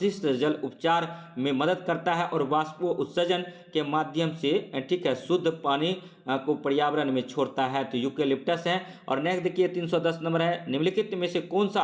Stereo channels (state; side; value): identical; both; correlation 1.00